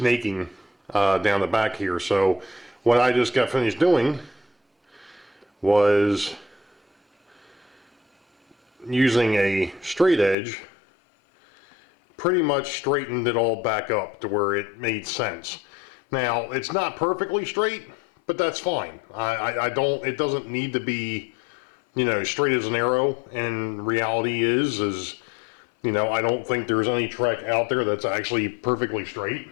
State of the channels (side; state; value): right; drops out; at 10.4 s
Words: down the back here. So what I just got finished doing was using a straight edge, pretty much straightened it all back up to where it made sense. Now, it's not perfectly straight, but that's fine. It doesn't need to be, straight as an arrow. And reality is, I don't think there's any track out there that's actually perfectly straight.